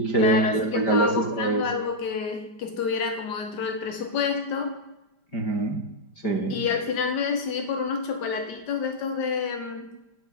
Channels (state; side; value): late; right; 5.0 ms